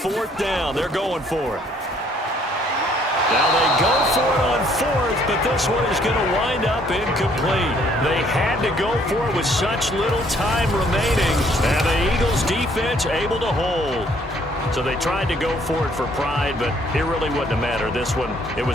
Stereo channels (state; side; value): normal; both; correlation 0.63